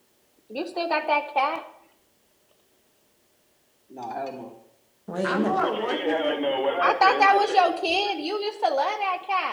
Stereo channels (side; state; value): both; identical; correlation 1.00